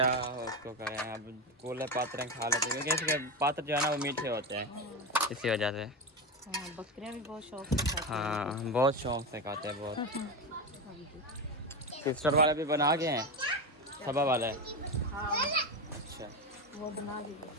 उसको करें, अब कूले पात्र खा लेते हैं, क्योंकि इसके पात्र जो है ना वो मीठे होते हैं, इसी वजह से। हाँ, बकरियाँ भी बहुत शौक से खाती हैं। हाँ बहुत शौक से खाते हैं बहुत। सिस्टर वाले भी बना गए हैं, सबा वाले। हाँ, अच्छा वो बना दीजिए।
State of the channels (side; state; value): both; normal; correlation 0.17